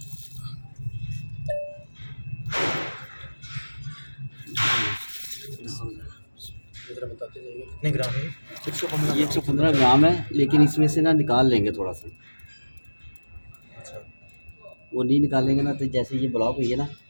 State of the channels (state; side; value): inverted; both; correlation -1.00